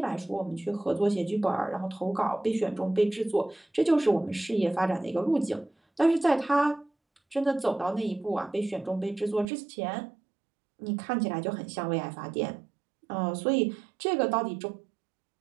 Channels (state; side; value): drops out; left; at 9.5 s